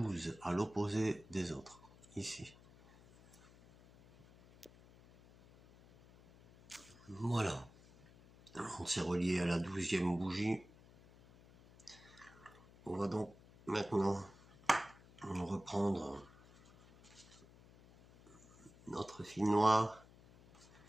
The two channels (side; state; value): left; noise; hum, 23 dB below the sound